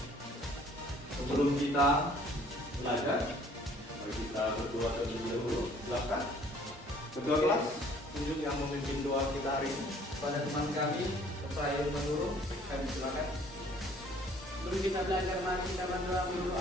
Sebelum kita belajar, mari kita berdoa terlebih dahulu. Silakan. Ketua kelas, tunjuk yang memimpin doa kita hari ini. Pada teman kami, saya menurut, kami silakan. Dulu kita belajar, mari kita berdoa menurut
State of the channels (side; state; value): both; normal; correlation 0.56